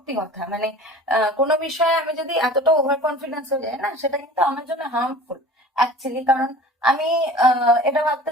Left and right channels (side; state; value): both; normal; correlation 0.42